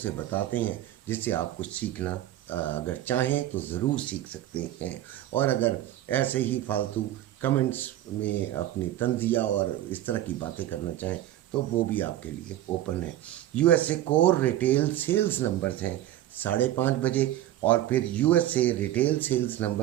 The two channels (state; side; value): quieter; left; 13.3 dB